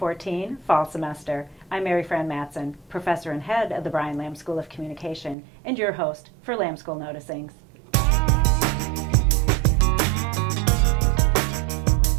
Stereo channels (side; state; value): left; drops out; at 5.4 s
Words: fall semester. I'm Mary Fran Mattson, professor and head of the Brian Lamb School of Communication, and your host for Lamb School Noticings.